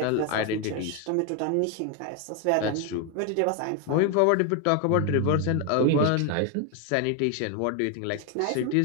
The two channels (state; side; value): different; both; correlation 0.01